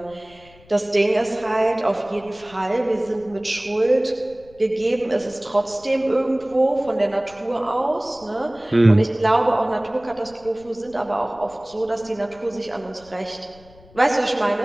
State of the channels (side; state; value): left; noise; rumble, 25 dB below the sound